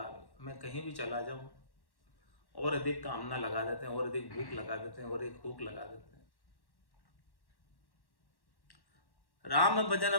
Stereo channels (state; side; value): late; right; 1.1 ms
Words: मैं कहीं भी चला जाऊं और अधिक कामना लगा देते हैं, और अधिक भूख लगा देते हैं, और एक भूख लगा देते हैं। राम भजन